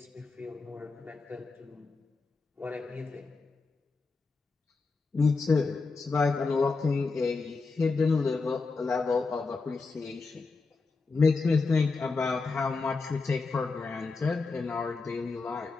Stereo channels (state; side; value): quieter; right; 4.1 dB